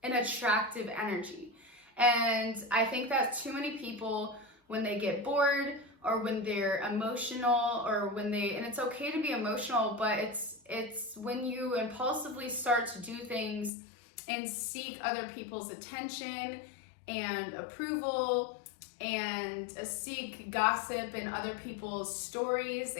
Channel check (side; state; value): right; drops out; at 13.7 s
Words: an attractive energy. And I think that too many people, when they get bored or when they're emotional or when they, and it's okay to be emotional, but it's when you impulsively start to do things and seek other people's attention and approval and seek gossip and other people's stories